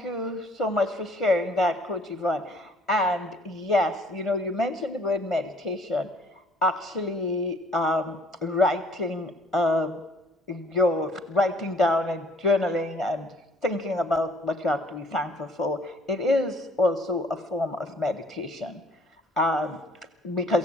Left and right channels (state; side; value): normal; both; correlation 0.59